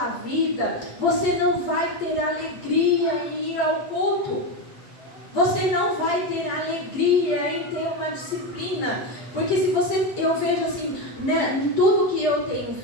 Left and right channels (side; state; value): right; late; 8.3 ms